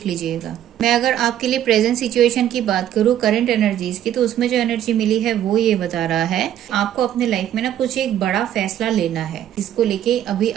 लीजिएगा। मैं अगर आपके लिए प्रेजेंट सिचुएशन की बात करूँ, करंट एनर्जीज की, तो उसमें जो एनर्जी मिली है वो ये बता रहा है आपको अपने लाइफ में ना कुछ एक बड़ा फैसला लेना है। इसको लेके अभी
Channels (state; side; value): quieter; left; 11.2 dB